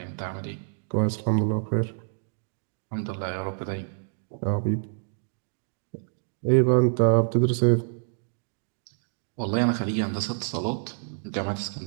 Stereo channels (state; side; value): silent; left; digital silence